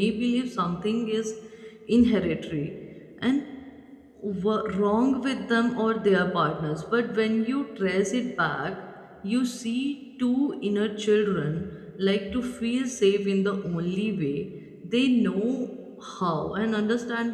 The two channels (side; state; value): both; identical; correlation 1.00